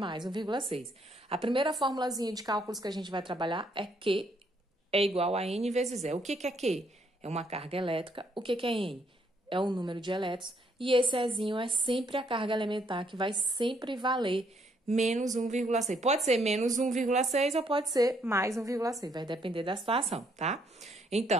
1,6. A primeira formulazinha de cálculos que a gente vai trabalhar é Q é igual a N vezes E. O que é Q? É uma carga elétrica. O que é N? É o número de elétrons. E esse Ezinho é sempre a carga elementar, que vai sempre valer menos 1,6. Pode ser menos 1,6 ou pode ser mais 1,6. Vai depender da situação, tá?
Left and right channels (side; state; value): both; normal; correlation 0.70